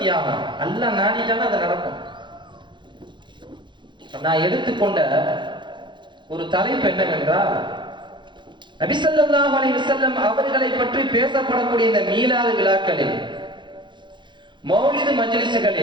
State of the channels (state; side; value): late; left; 0.23 ms